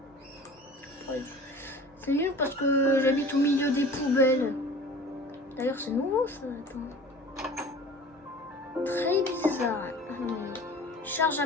C'est nul parce que j'habite au milieu des poubelles. D'ailleurs, c'est nouveau ça. Attends. Très bizarre. Je charge à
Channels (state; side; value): normal; both; correlation 0.42